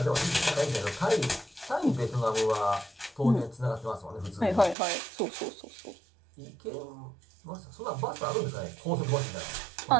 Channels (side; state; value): left; drops out; at 4.8 s